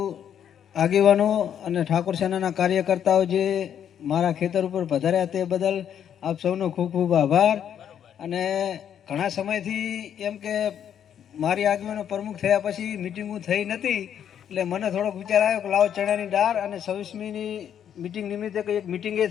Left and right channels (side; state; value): right; quieter; 9.2 dB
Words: આગેવાનો અને ઠાકોર સેનાના કાર્યકર્તાઓ જે મારા ખેતર ઉપર પધાર્યા તે બદલ આપ સૌનો ખૂબ ખૂબ આભાર. અને ઘણા સમયથી એમ કે મારી આગેવાનો પ્રમુખ થયા પછી મિટિંગો થઈ નથી, એટલે મને થોડોક વિચાર આવ્યો કે લાવો ચણાની દાળ અને 26મીની મિટિંગ નિમિત્તે એક મિટિંગ એ